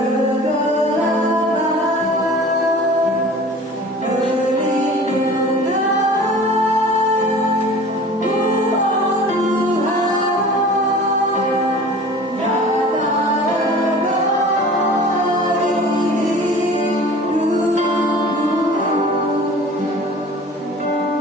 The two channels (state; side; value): normal; both; correlation 0.43